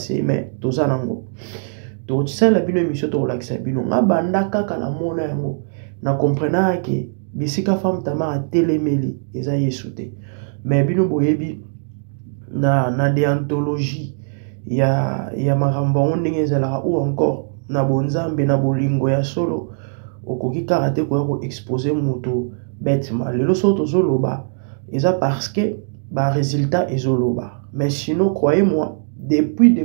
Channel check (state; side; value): silent; left; digital silence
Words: mais toza nango tokotisala bino émission tokolakisa bino nga banda kaka na mona yango na comprena ke bisika femme Tamar atelemeli eza Yesu te mais bino boyebi na déontologie ya makambo yango ndenge ezalaka ou encore na bonzambe na bolingo ya solo okoki kaka te koya koexpose moto bêtement lelo so tozoloba eza parce que résultat ezoloba mais sinon croyez-moi depuis